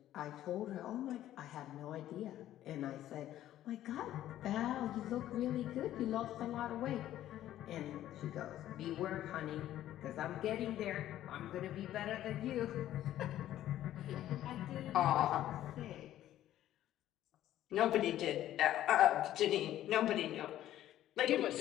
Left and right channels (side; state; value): right; quieter; 12.9 dB